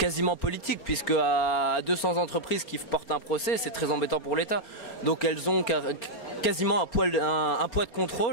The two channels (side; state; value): right; late; 4.4 ms